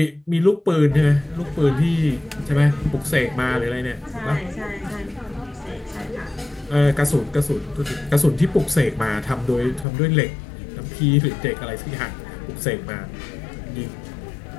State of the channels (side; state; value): right; drops out; at 9.9 s